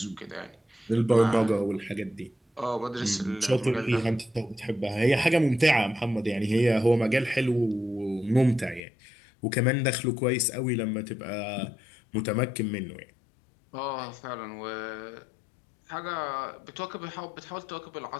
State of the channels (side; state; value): right; drops out; at 8.8 s